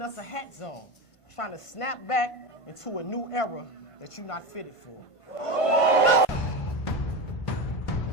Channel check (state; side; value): late; right; 1.5 ms